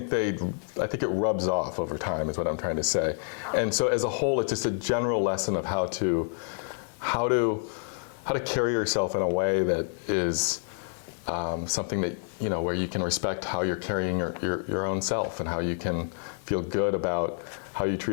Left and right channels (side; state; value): right; silent; 59 dB below the other